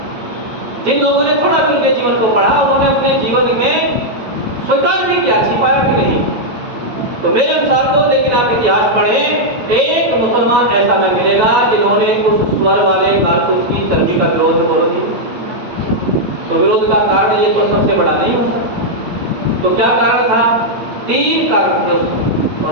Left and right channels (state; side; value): late; left; 8.7 ms